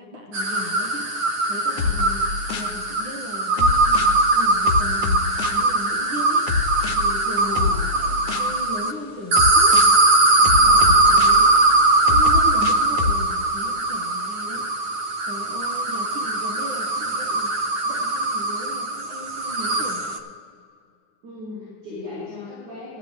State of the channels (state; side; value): late; left; 9.6 ms